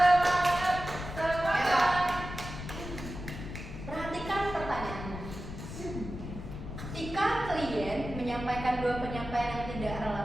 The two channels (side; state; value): left; noise; rumble, 9 dB below the sound